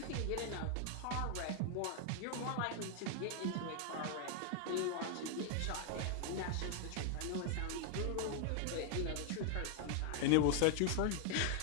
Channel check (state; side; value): different; both; correlation 0.00